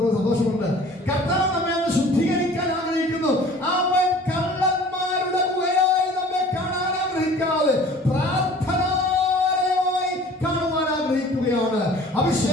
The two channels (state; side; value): normal; both; correlation 0.47